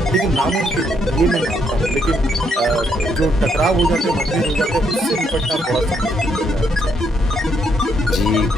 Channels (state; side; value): normal; both; correlation 0.74